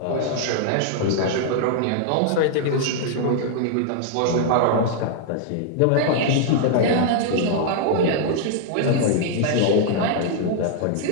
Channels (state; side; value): different; both; correlation -0.01